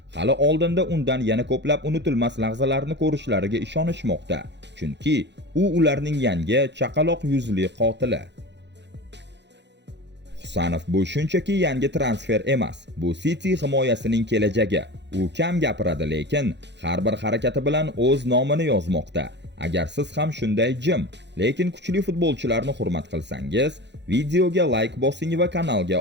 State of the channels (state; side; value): late; left; 0.51 ms